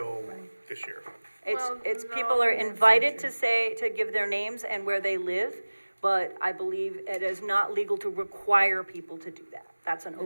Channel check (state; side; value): inverted; both; correlation -1.00